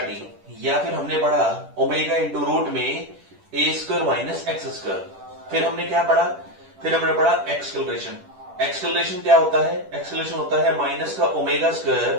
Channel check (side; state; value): left; late; 10 ms